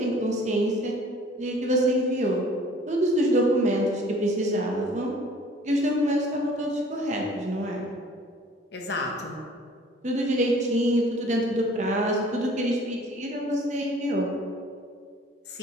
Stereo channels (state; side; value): normal; both; correlation 0.52